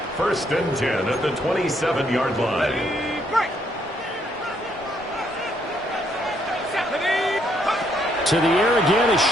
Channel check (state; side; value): normal; both; correlation 0.71